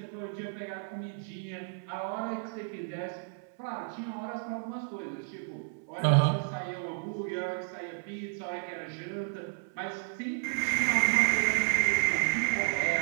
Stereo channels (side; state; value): left; silent; 56 dB below the other